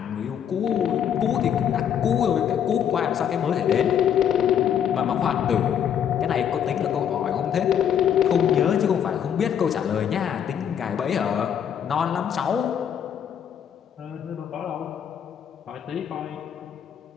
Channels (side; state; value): right; quieter; 8.9 dB